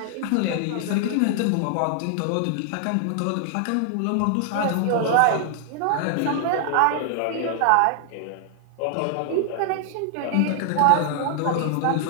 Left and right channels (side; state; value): both; different; correlation 0.00